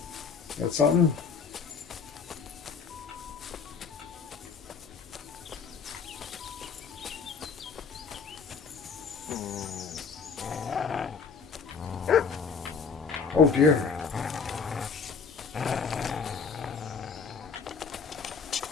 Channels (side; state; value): right; quieter; 5.6 dB